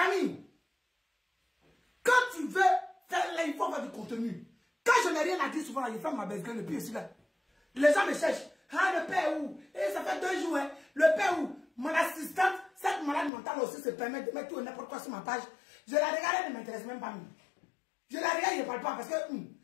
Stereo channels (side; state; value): right; drops out; at 13.3 s